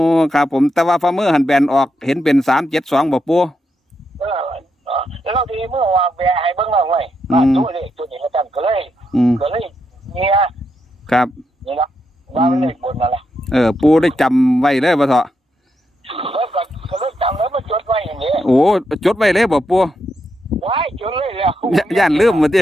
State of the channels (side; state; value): both; normal; correlation 0.82